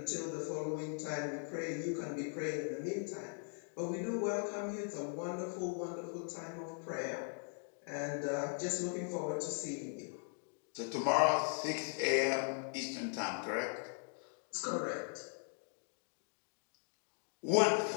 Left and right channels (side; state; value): right; silent; 51 dB below the other